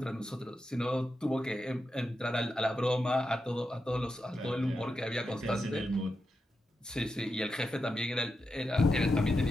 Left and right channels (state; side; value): normal; both; correlation 0.88